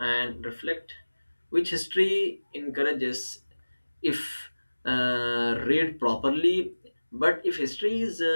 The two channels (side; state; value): both; inverted; correlation -1.00